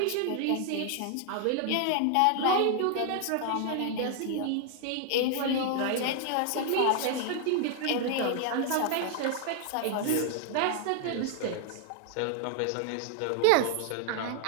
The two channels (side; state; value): both; different; correlation 0.00